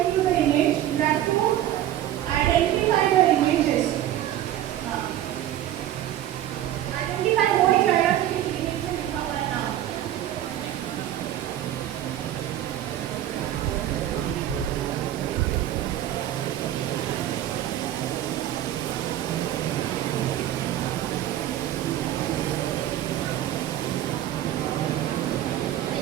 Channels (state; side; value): quieter; left; 12.5 dB